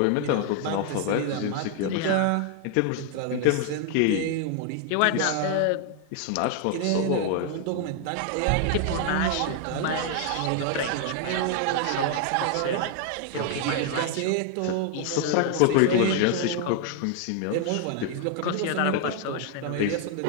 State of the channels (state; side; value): different; both; correlation 0.00